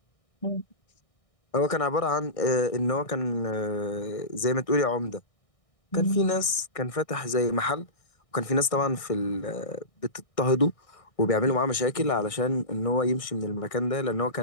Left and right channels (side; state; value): right; late; 1.6 ms